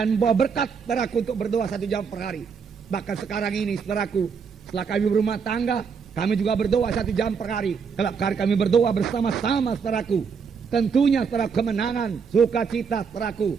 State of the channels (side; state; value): left; quieter; 6.0 dB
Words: membawa berkat, saudaraku, untuk berdoa 1 jam per hari. Bahkan sekarang ini, saudaraku, setelah kami berumah tangga, kami juga berdoa 1 jam per hari. Kalau kami berdoa bersama-sama, saudaraku, tentunya, saudaraku, kemenangan, sukacita, saudaraku,